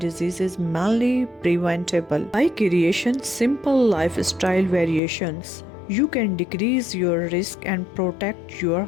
is mainly preventable. By creating simple lifestyle variations, you can decrease your risk and protect your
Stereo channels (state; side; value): drops out; right; at 5.0 s